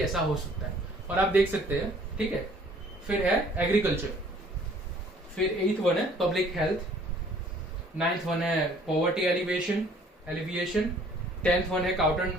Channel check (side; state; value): both; normal; correlation 0.57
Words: ऐसा हो सकता है. और आप देख सकते हैं. ठीक है, फिर है एग्रीकल्चर. फिर 8th वन है पब्लिक हेल्थ. 9th वन है पॉवर्टी एलिवेशन. 10th one है